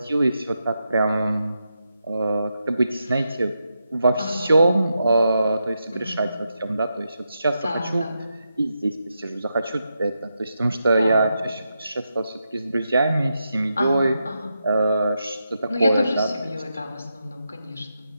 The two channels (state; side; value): inverted; both; correlation -0.86